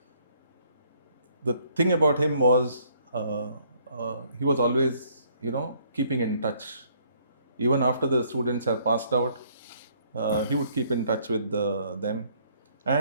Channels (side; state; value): both; inverted; correlation -0.64